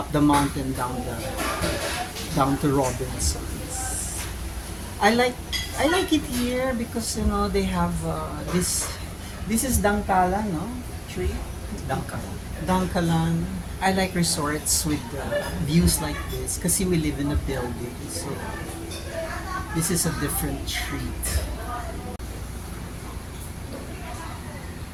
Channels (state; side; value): identical; both; correlation 1.00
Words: the mountain down to Robinson's. I like it here because they have this is Dangkalan, no? Tree? Dangkalan. I like resorts with views like this kasi we live in a building. So this is a different treat.